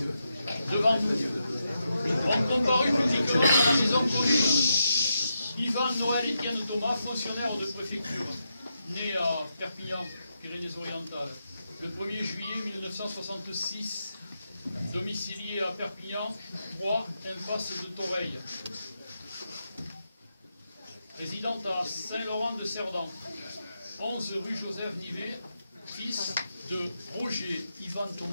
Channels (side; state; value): both; inverted; correlation -0.85